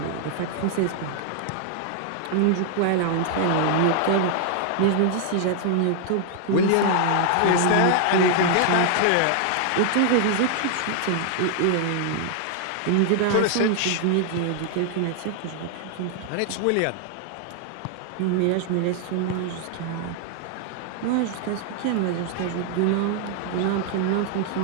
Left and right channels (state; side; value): different; both; correlation 0.00